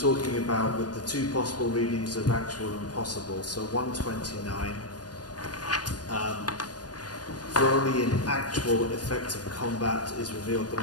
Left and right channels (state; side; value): late; right; 0.69 ms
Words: about with the two possible readings of actual and possible, so 129, for only in actual effective combat is revealed the